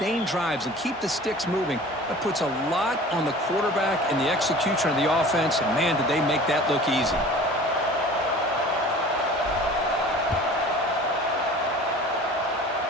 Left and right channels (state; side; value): normal; both; correlation 0.43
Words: drives and keep the sticks moving, that puts a lot on the quarterback and the execution of the offense, and man, did they make that look easy.